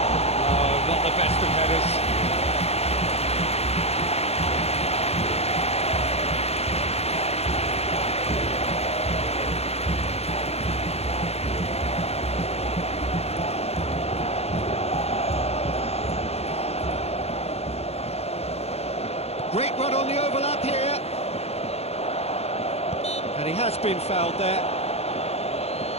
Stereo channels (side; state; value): right; late; 0.30 ms